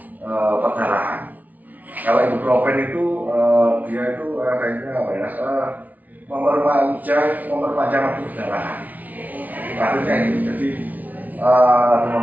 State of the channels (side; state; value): left; late; 0.076 ms